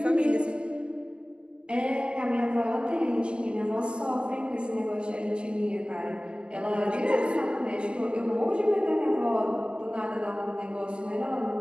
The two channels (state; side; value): late; left; 0.054 ms